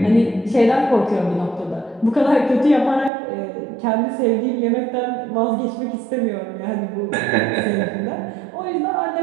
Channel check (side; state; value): left; drops out; at 3.1 s